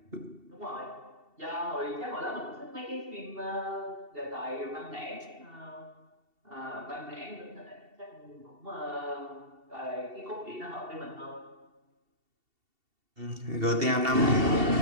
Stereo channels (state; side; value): late; left; 2.7 ms